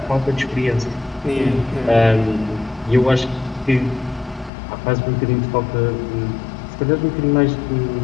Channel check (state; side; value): drops out; right; at 4.5 s